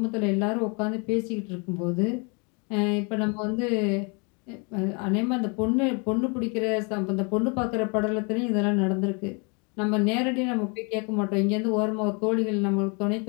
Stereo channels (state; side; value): quieter; right; 33.4 dB